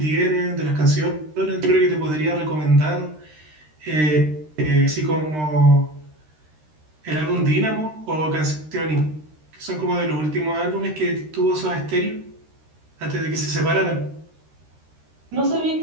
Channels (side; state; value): left; late; 13 ms